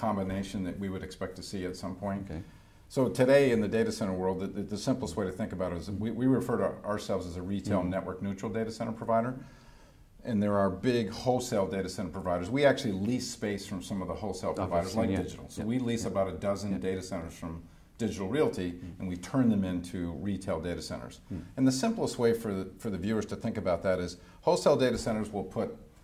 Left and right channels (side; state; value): both; identical; correlation 1.00